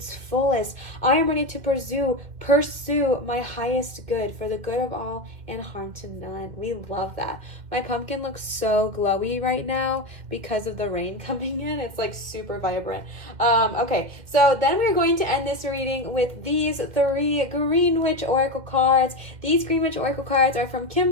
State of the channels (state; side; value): late; left; 2.0 ms